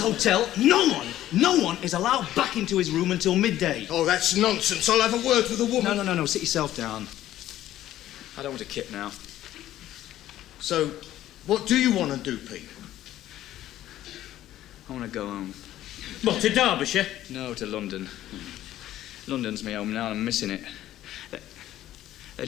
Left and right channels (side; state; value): right; quieter; 13.4 dB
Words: no one is allowed back into his room until midday. Oh, that's nonsense. I'll have a word with the woman. No. Sit yourself down. I don't want a kip now. So, what do you want to do, Pete? I want to go home. What, to Derbyshire? No, to London. London's my home now and I'm missing it. They